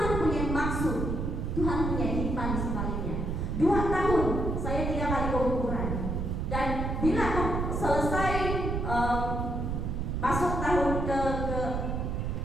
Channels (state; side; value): noise; right; rumble, 1 dB below the sound